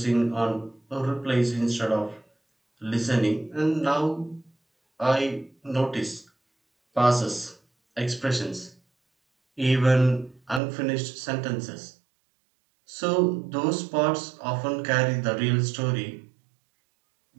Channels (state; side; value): drops out; left; at 10.6 s